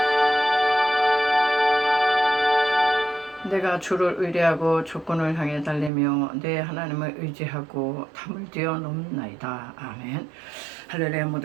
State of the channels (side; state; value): left; drops out; at 5.9 s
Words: 내가 주를 의뢰하고 조건을 향해 달리며 내 하나님을 의지하고 담을 뛰어넘나이다. 아멘. 할렐루야.